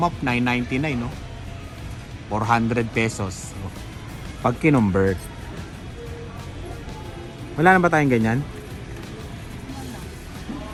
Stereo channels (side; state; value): both; identical; correlation 1.00